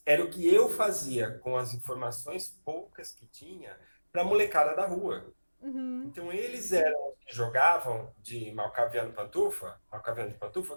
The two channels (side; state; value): both; inverted; correlation -1.00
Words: era o que eu fazia com as informações poucas que tinha para a molecada da rua. Uhum. Então eles eram os que jogavam de Malcaviano Malcaviano de Pantufa,